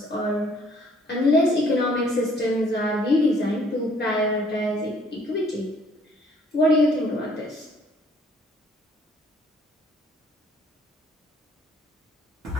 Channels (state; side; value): normal; both; correlation 0.61